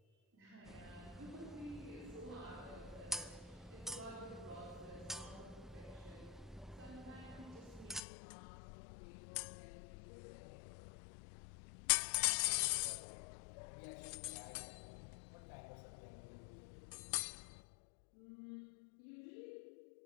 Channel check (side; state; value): right; drops out; at 8.0 s